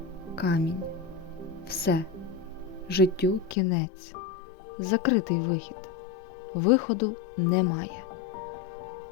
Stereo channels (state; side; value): drops out; right; at 3.6 s